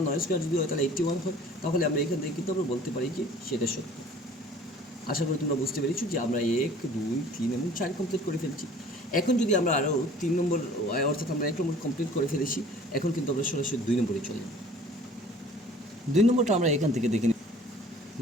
9 স্কোয়ার যদি হয় তাহলে 81 হয়, তাহলে আমরা এখান থেকে কিন্তু আমরা বলতে পারি যে সেটা সত্য। আশা করি তোমরা বুঝতে পেরেছো যে আমরা 1 2 3 এবং 4 কমপ্লিট করে ফেলছি। এখন যদি আমরা আরও 3 নম্বর অর্থাৎ আমরা 1 নম্বর কমপ্লিট করে ফেলেছি, এখন কিন্তু আমরা সরাসরি 2 নম্বরে চলে যাব। 2 নম্বরটা আমরা এখান থেকে দেখে নিই।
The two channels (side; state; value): both; normal; correlation 0.50